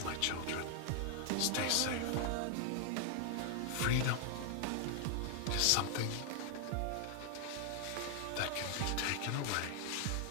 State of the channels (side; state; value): both; different; correlation 0.00